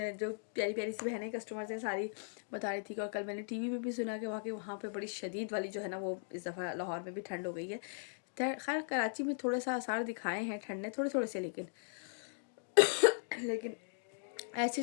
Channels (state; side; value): silent; right; digital silence